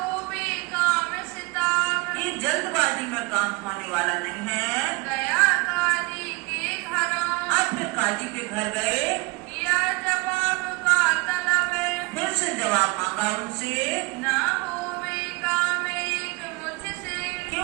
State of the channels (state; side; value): quieter; left; 25.6 dB